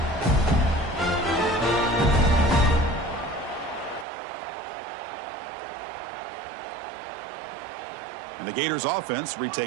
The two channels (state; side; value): drops out; left; at 4.0 s